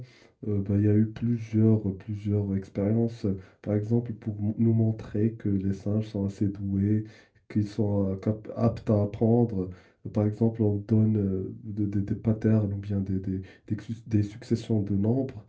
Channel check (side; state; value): both; identical; correlation 1.00